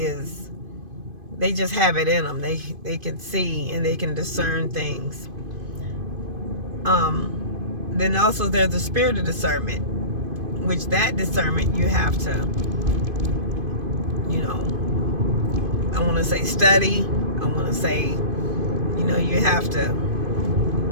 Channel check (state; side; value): late; left; 2.5 ms